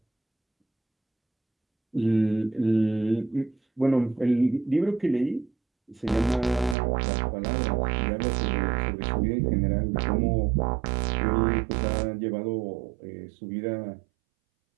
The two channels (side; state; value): left; drops out; at 6.8 s